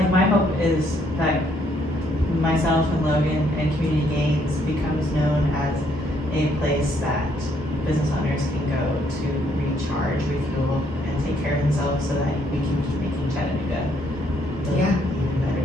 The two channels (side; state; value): both; normal; correlation 0.69